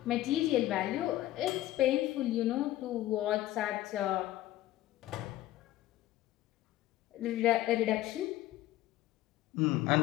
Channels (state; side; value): quieter; right; 15.0 dB